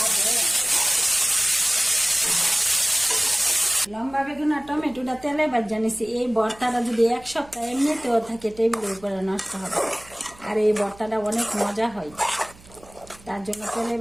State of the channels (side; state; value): right; noise; hum, 23 dB below the sound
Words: লম্বা বেগুন আর টমেটোটা তেলে ভাজা নিছি। এই ভর্তাটা যদি এক সপ্তাহ এমনিতেও থাকে টেবিলের উপরে নষ্ট হবে, আর এই ভর্তাটা অনেক মজা হয়, তার জন্য তেলে